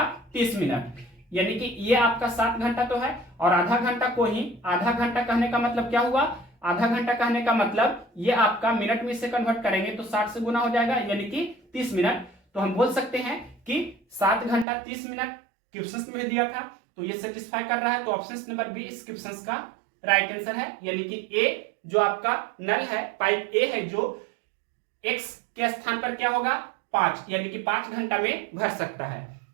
30 मिनट, यानी कि ये आपका 7 घंटा तो है। और आधा घंटा को ही आधा घंटा कहने का मतलब क्या हुआ, आधा घंटा कहने का मतलब ये आपका मिनट में इसे कन्वर्ट करेंगे तो 60 से गुना हो जाएगा, यानी कि 30 मिनट। तो हम बोल सकते हैं कि 7 घंटा 30 मिनट क्वेश्चन में दिया था, तो ये सेटिस्फाई कर रहा है। तो ऑप्शन नंबर बी इस क्वेश्चन का राइट आंसर है, यानी कि ए जो आपका नल है, पाइप ए है जो x के स्थान पर क्या होगा 5, यानी कि 5 घंटा में भर सकता है।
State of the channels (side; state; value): left; drops out; at 14.7 s